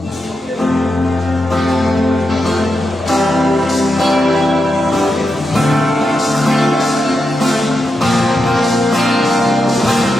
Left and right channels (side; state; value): both; normal; correlation 0.87